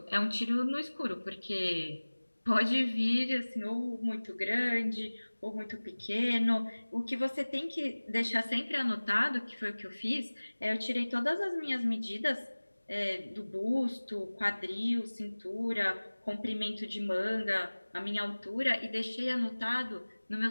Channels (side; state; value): both; inverted; correlation -1.00